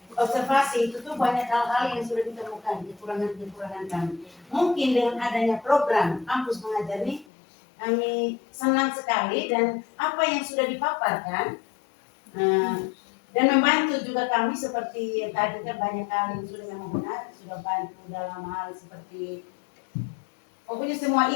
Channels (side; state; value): right; drops out; at 7.2 s